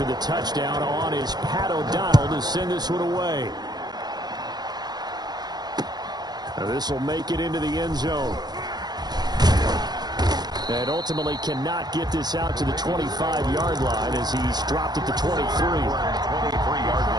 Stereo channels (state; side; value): late; left; 0.20 ms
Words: the touchdown on is Pat O'Donnell to send this one away. Now this will make it into the end zone. And ultimately cannot get this out to the 25-yard line as he's dropped at the 23. 23-yard